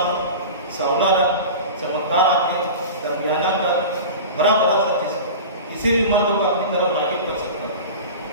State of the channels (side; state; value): both; inverted; correlation -0.32